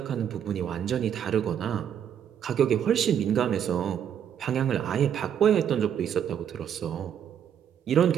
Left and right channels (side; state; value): left; quieter; 9.0 dB